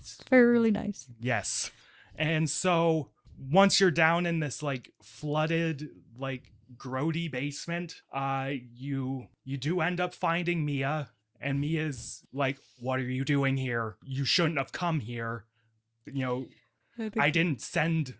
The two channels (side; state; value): both; identical; correlation 1.00